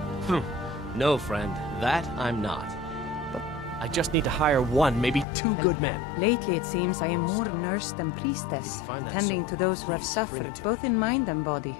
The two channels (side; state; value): right; drops out; at 5.2 s